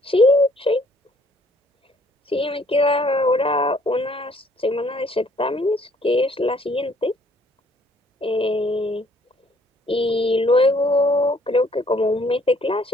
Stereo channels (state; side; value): normal; both; correlation 0.62